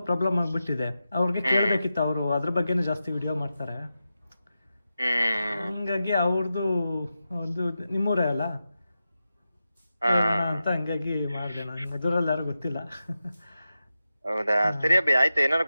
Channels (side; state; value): both; inverted; correlation -0.91